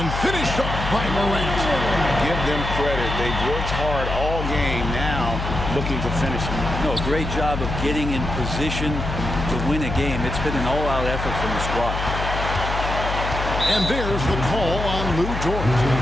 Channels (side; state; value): left; noise; hum, 4 dB below the sound